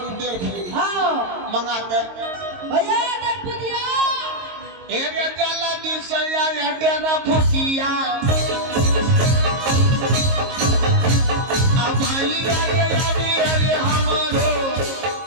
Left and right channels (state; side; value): late; left; 22 ms